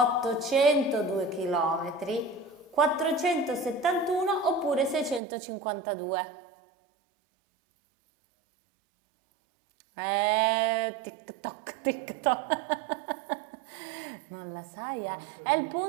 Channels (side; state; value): left; drops out; at 5.2 s